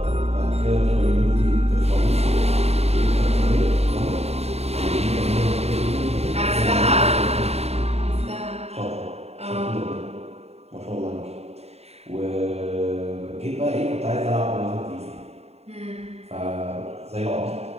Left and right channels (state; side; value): late; left; 0.30 ms